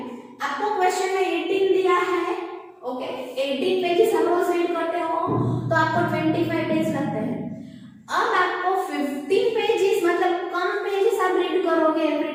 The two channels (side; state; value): both; identical; correlation 1.00